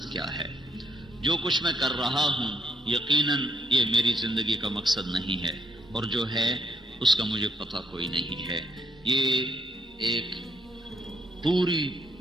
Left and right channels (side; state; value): both; normal; correlation 0.71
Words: کیا ہے۔ جو کچھ میں کر رہا ہوں یقیناً یہ میری زندگی کا مقصد نہیں ہے، اور جو ہے اس کا مجھے پتہ کوئی نہیں ہے۔ یہ ایک پوری